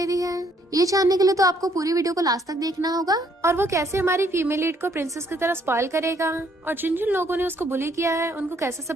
रही है, ये जानने के लिए तो आपको पूरी वीडियो को लास्ट तक देखना होगा। और वो कैसे हमारी फीमेल लीड को प्रिंसेस की तरह स्पॉइल करेगा और जिन जिन लोगों ने उसको बुली किया है उनको कैसे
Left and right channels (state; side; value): normal; both; correlation 0.67